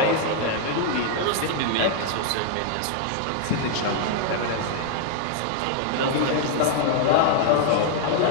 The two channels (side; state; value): both; different; correlation 0.00